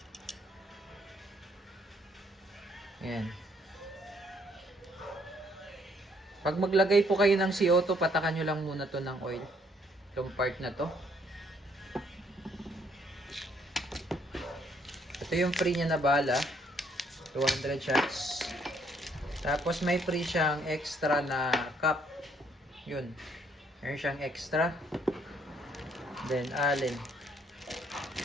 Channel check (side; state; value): both; normal; correlation 0.67